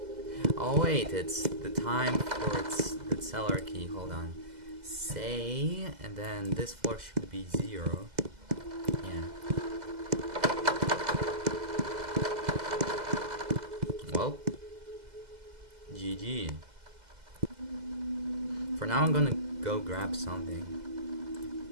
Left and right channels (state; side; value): late; left; 2.0 ms